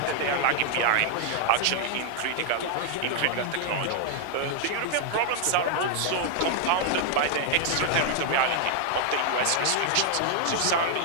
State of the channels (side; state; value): both; different; correlation 0.00